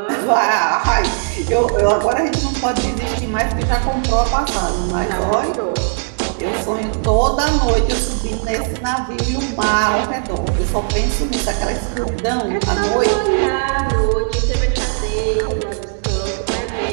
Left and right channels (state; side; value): silent; left; digital silence